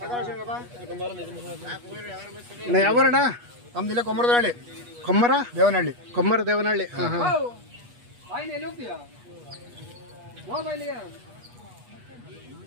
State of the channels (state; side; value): late; left; 8.3 ms